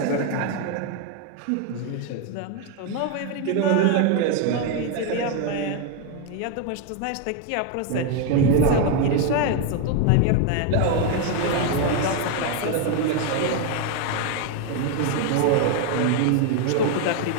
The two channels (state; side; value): different; both; correlation 0.01